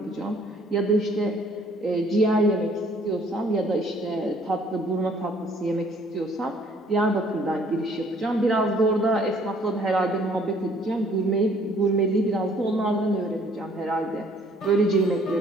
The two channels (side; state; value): both; normal; correlation 0.60